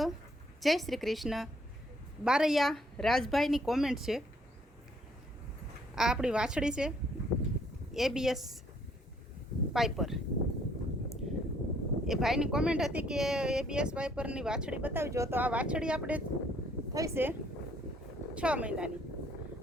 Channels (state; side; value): normal; both; correlation 0.65